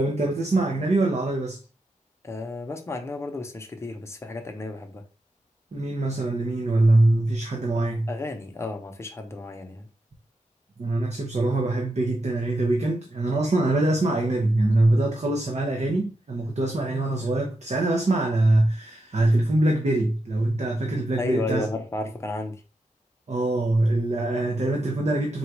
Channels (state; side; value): normal; both; correlation 0.86